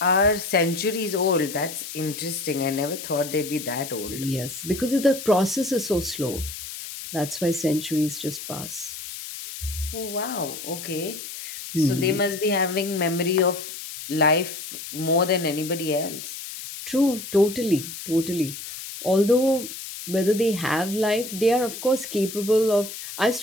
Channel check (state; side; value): noise; left; hiss, 10 dB below the sound